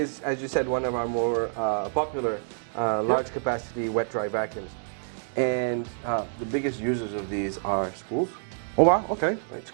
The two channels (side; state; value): left; silent; digital silence